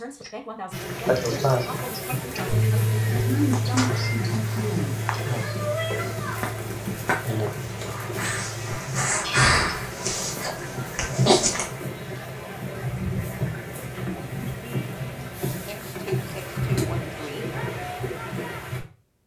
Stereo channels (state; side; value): identical; both; correlation 1.00